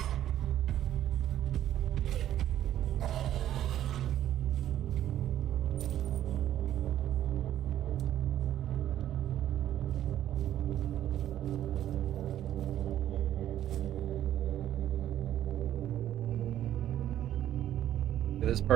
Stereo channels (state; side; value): quieter; left; 11.8 dB